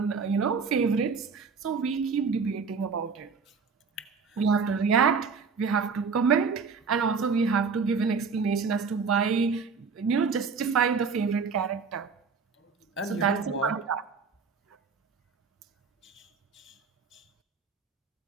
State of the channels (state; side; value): quieter; left; 5.3 dB